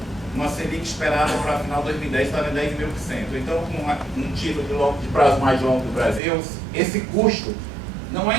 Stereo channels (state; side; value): drops out; left; at 6.2 s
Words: Selic esperada para final de 2010, estava em 10,5%. Então, com um título de prazo mais longo do Brasil, esse custo não é